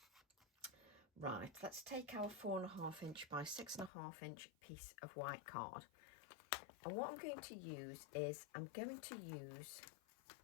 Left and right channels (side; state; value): right; drops out; at 3.9 s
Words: Right, let's take our 4.5 inch by 6.5 inch piece of white card, and what I'm going to use is I'm going to use